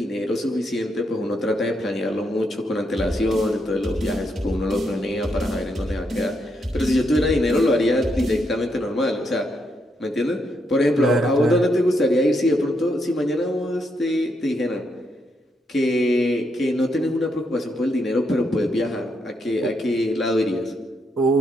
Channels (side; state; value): both; normal; correlation 0.79